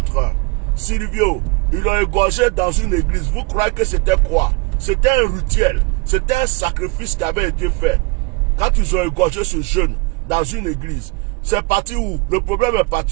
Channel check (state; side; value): quieter; left; 27.3 dB